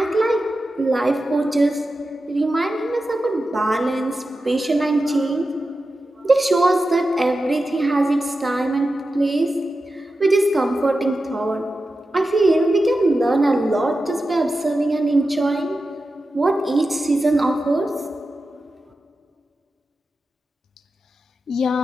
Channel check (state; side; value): normal; both; correlation 0.92